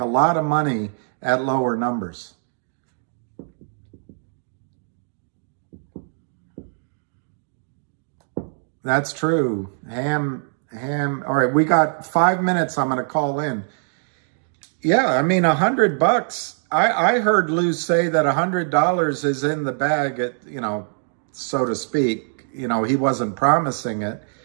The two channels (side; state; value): left; silent; digital silence